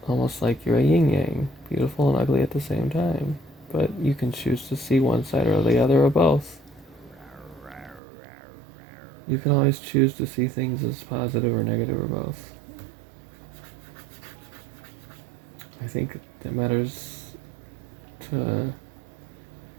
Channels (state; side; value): drops out; left; at 8.0 s